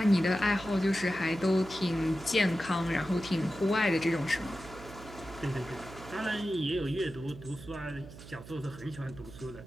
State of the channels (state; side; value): noise; right; hum, 16 dB below the sound